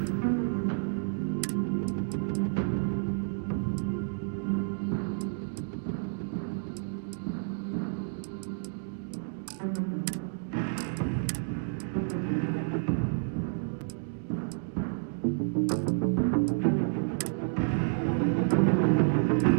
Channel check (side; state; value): left; silent; digital silence